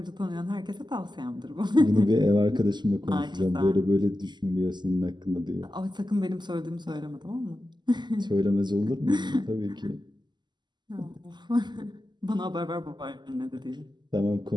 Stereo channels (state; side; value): late; left; 0.21 ms